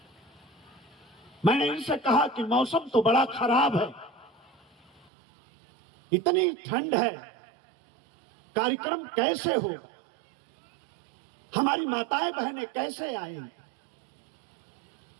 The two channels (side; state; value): left; drops out; at 5.1 s